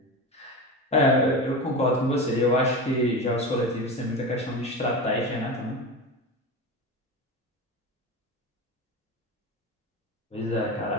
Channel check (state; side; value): normal; both; correlation 0.24